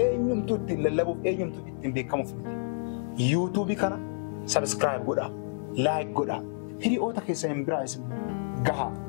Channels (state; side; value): silent; right; digital silence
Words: eenyumtuu ittiin lallabuuf eenyumtuu ittiin beekamuuf miti. Yuutuubii kana sabskiraayib godhaa, laayik godhaa. Hiriyoota keessan biraas immoo gahaa.